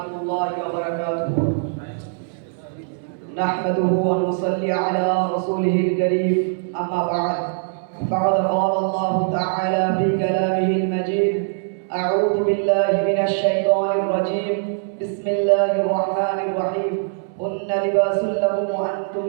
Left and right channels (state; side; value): silent; left; digital silence